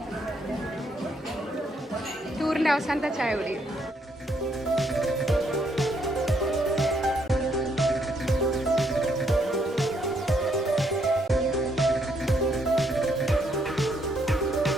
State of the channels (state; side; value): normal; both; correlation 0.72